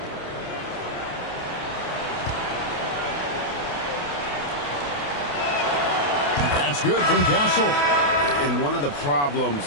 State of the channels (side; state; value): right; late; 28 ms